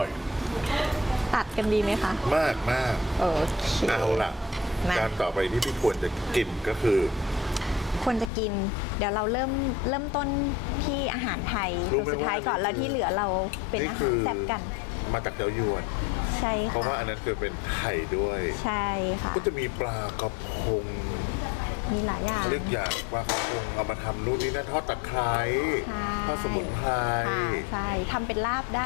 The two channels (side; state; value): right; drops out; at 8.3 s